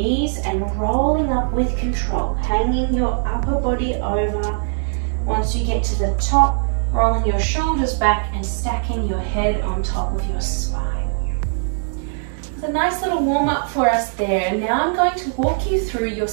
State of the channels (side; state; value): left; silent; digital silence